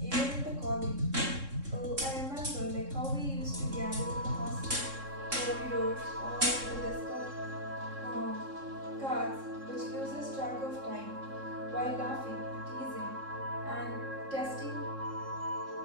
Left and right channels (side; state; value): left; late; 3.6 ms